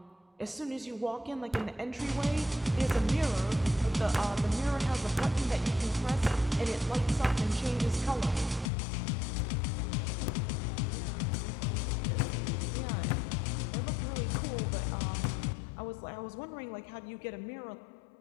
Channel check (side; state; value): right; drops out; at 8.7 s